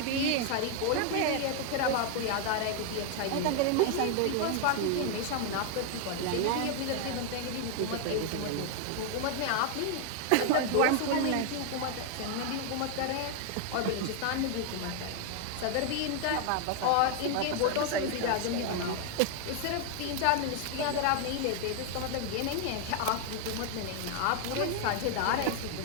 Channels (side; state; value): both; different; correlation 0.01